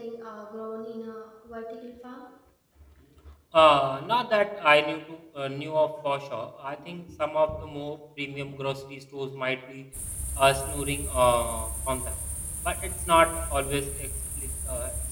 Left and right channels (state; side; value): identical; both; correlation 1.00